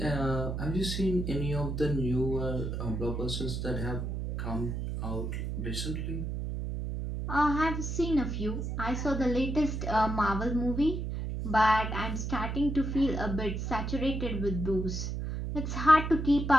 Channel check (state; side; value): noise; right; hum, 3 dB below the sound